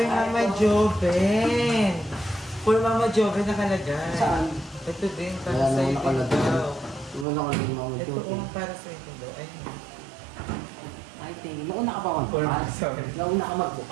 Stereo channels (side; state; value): left; drops out; at 7.2 s